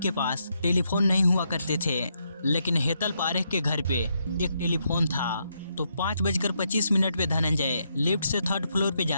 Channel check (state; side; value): inverted; both; correlation -0.78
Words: पास टेलीफोन नहीं हुआ करते थे, लेकिन हेतल पारेख के घर पे एक टेलीफोन था। तो 5:25 पे धनंजय लिफ्ट से 3rd फ्लोर पे